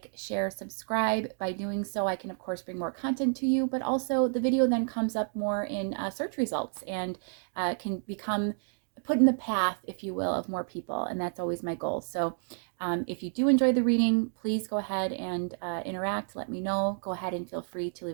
share, subscribe. By doing so, I can, of course, bring more content to you, but also the video then comes up more in search results and can become put in the path, if you will, of more people, and that's always my goal. So if you do enjoy the reading, please go ahead and interact. Let me know. Go ahead and feel free to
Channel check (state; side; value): silent; left; digital silence